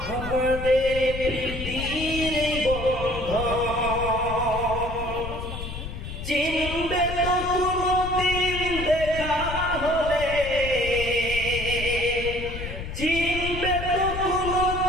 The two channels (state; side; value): noise; left; rumble, 7 dB below the sound